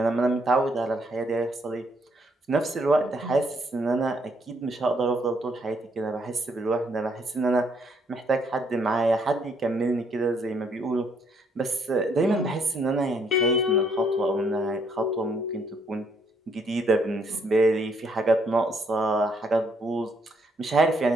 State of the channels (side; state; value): both; normal; correlation 0.70